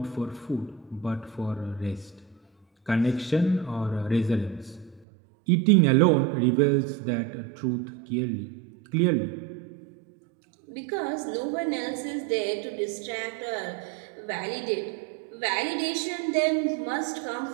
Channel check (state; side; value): drops out; left; at 5.1 s